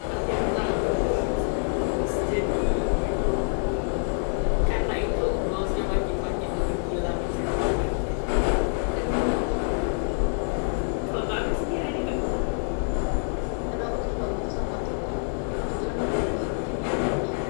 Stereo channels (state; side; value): silent; right; 61 dB below the other